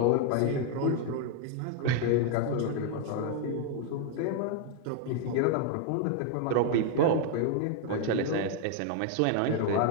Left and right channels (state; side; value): different; both; correlation 0.00